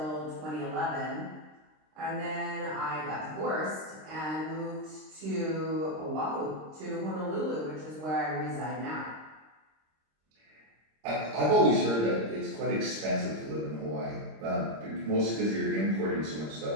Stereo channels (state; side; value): late; left; 26 ms